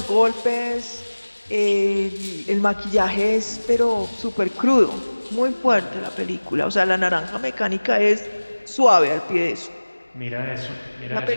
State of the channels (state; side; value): inverted; both; correlation -1.00